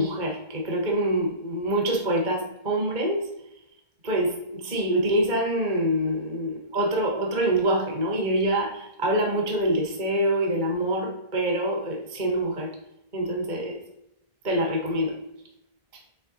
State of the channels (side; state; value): left; late; 2.1 ms